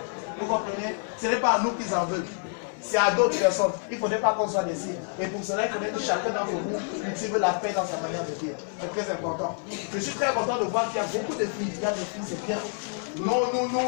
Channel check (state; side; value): silent; right; 60 dB below the other